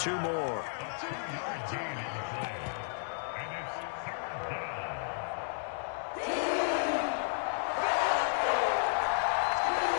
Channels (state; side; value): silent; right; digital silence